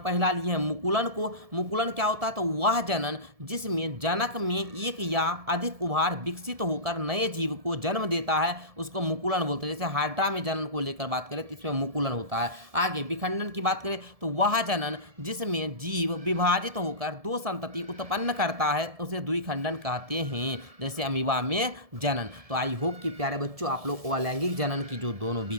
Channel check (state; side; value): late; left; 1.7 ms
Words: लिए हैं मुकुलन को। मुकुलन क्या होता है, तो वह जनन जिसमें जनक में एक या अधिक उभार विकसित होकर नए जीव को जन्म देता है उसको मुकुलन बोलते हैं। जैसे हाइड्रा में जनन को लेकर बात करें तो इसमें मुकुलन होता है। आगे विखंडन की बात करें तो वह जनन जिसमें जीव विभाजित होकर दो संतति उत्पन्न करता है उसे द्विखंडन कहते हैं, जैसे अमीबा में जनन। तो आई होप कि प्यारे बच्चों आप लोग अलैंगिक जनन की जो दोनों